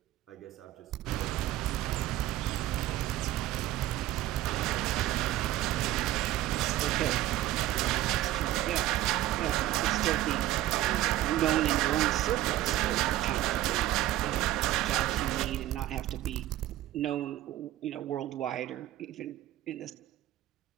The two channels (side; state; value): left; quieter; 14.6 dB